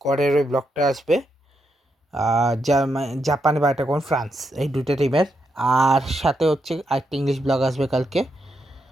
ওই ব্লগটা আসবে। জাপান বা এটা কোন ফ্রান্স, এই দুটো টিমের। আর সাথে হচ্ছে আরেকটা ইংলিশ ব্লগ আসবে কালকে,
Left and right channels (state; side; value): normal; both; correlation 0.82